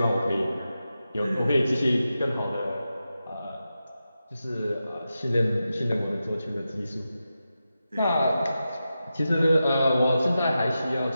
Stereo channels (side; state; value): both; inverted; correlation -0.91